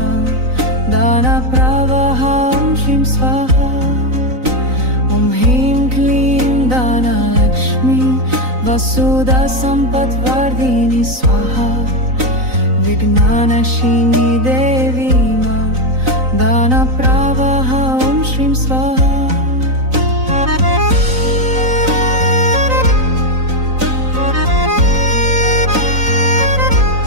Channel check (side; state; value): left; late; 3.9 ms